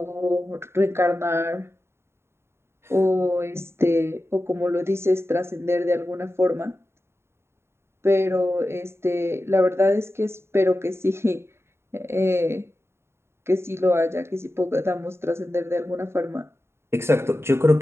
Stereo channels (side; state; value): left; late; 0.12 ms